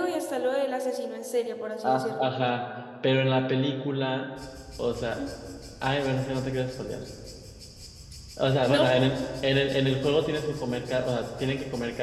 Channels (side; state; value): both; identical; correlation 1.00